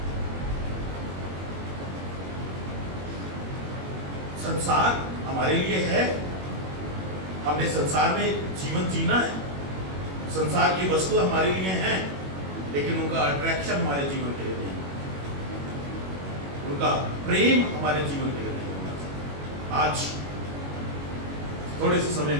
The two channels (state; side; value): late; left; 21 ms